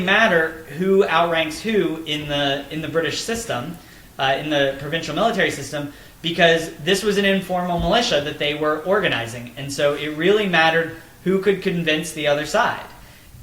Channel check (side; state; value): both; identical; correlation 1.00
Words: who outranks who in the British system. in the provincial military system, because this was an informal militia that they were organizing. And so it really mattered who could convince the other side.